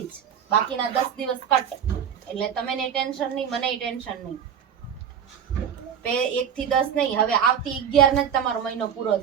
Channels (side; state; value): left; quieter; 8.3 dB